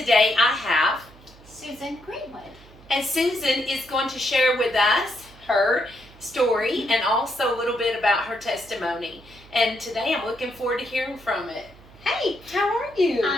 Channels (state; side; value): noise; right; hum, 23 dB below the sound